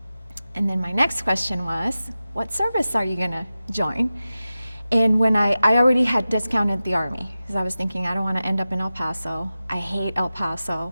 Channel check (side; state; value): both; inverted; correlation -0.94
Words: And then my next question was, what service are you gonna join? And when I already had discounted the Army, because I was thinking I don't want to end up in El Paso. I hate El Paso,